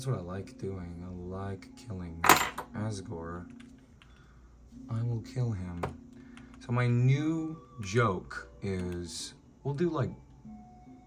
what I like doing. I like killing Asgore. I will kill him. So my new joke is, we'll do like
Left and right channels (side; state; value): both; identical; correlation 1.00